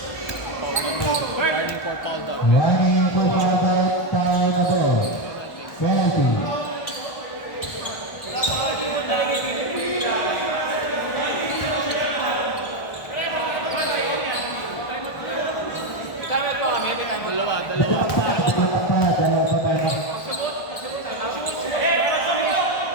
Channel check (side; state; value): right; late; 1.5 ms